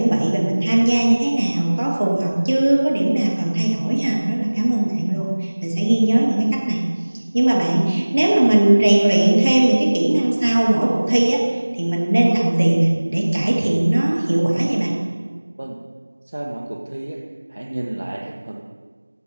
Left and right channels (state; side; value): inverted; both; correlation -1.00